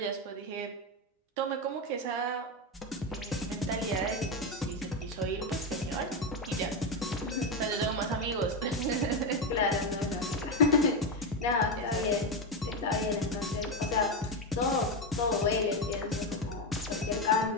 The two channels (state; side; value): normal; both; correlation 0.10